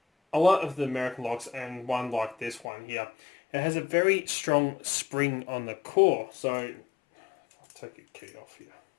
a lot of the American locks, and one like this one here, it has a very strong spring on the core. So, I'll take your key off here.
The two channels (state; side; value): drops out; right; at 2.7 s